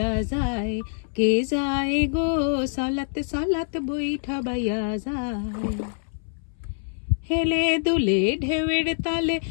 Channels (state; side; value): silent; right; 62 dB below the other